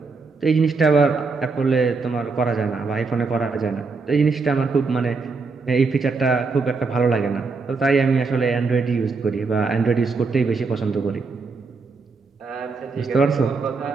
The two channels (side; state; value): left; quieter; 4.3 dB